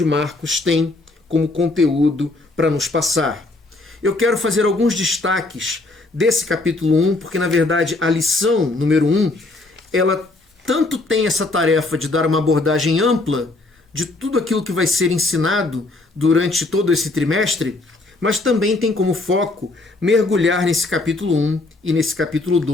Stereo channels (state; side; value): quieter; right; 3.1 dB